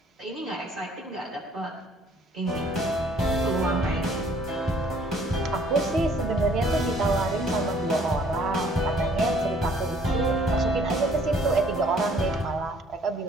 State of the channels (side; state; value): both; normal; correlation 0.59